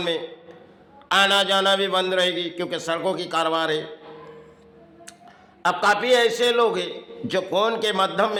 में आना जाना भी बंद रहेगी, क्योंकि सड़कों की कारोबार है। अब काफ़ी ऐसे लोग हैं जो फ़ोन के माध्यम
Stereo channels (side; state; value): both; identical; correlation 1.00